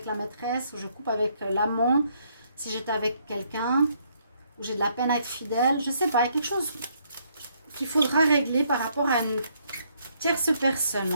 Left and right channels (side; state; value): both; inverted; correlation -0.71